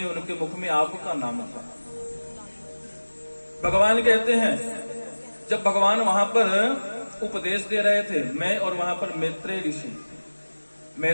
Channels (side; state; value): both; inverted; correlation -1.00